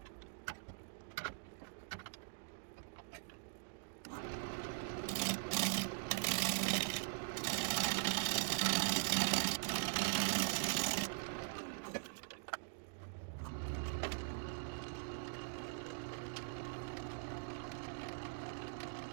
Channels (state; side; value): silent; left; digital silence